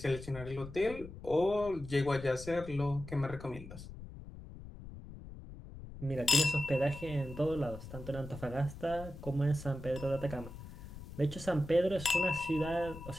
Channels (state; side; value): noise; left; rumble, 13 dB below the sound